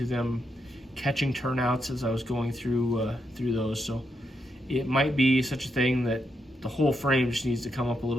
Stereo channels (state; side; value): normal; both; correlation 0.82